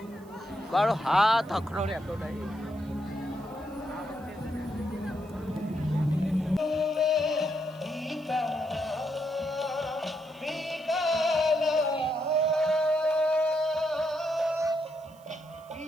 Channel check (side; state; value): right; noise; hiss, 28 dB below the sound